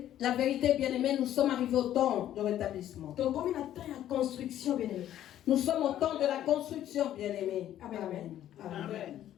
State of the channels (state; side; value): quieter; right; 11.9 dB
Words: la vérité, bien-aimé. Nous sommes arrivés au temps de rétablissement. Combien de temps la construction, bien-aimé? Nous sommes au temps de la construction, bien-aimé. Amen. Amen. Amen.